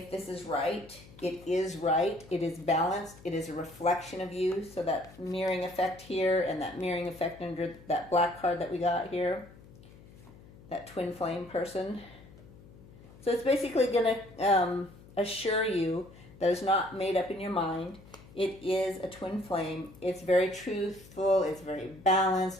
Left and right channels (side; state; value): left; noise; hum, 21 dB below the sound